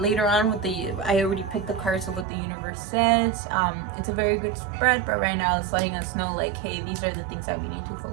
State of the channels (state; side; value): drops out; left; at 2.2 s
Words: on with I already picked the cards of what the universe says. It's a very good spread, but right now it's letting us know like, hey, these are the things that we need to